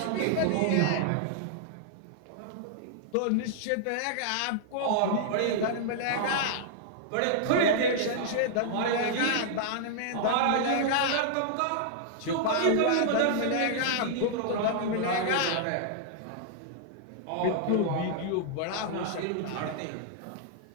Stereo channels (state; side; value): different; both; correlation -0.01